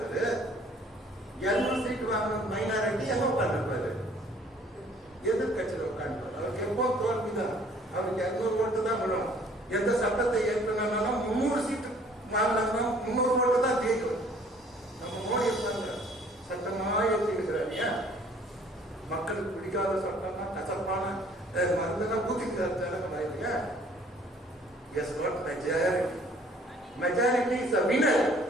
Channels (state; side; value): normal; both; correlation 0.57